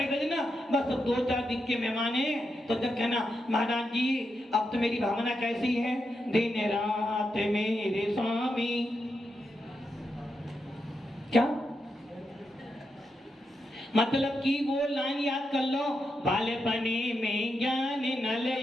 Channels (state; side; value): normal; both; correlation 0.85